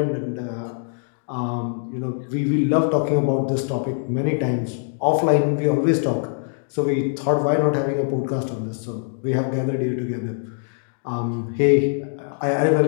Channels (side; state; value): right; silent; digital silence